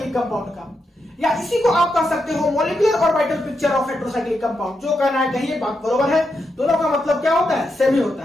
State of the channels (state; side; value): normal; both; correlation 0.84